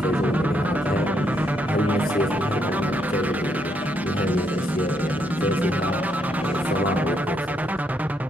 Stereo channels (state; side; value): normal; both; correlation 0.75